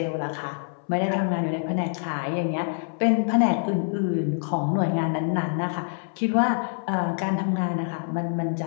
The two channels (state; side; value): silent; right; 61 dB below the other